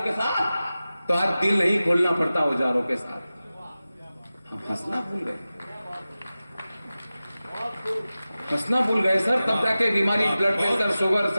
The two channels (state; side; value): inverted; both; correlation -0.95